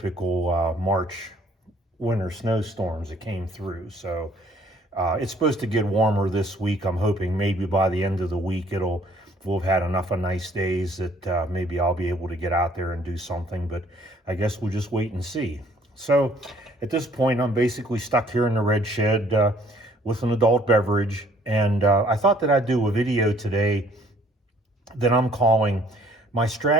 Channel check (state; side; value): normal; both; correlation 0.60